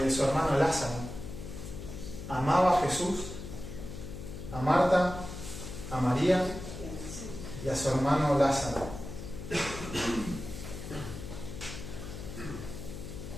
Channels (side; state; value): left; noise; hum, 9 dB below the sound